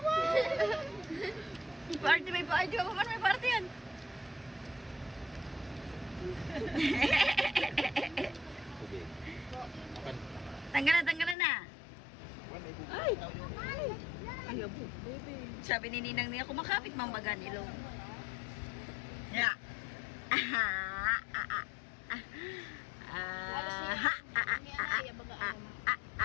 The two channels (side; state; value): right; drops out; at 11.4 s